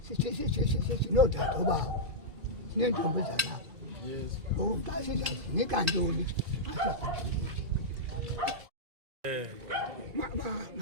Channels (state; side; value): late; left; 2.4 ms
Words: sinodade obawo sineentombi zalapha ngoku xa sizawunika ntoni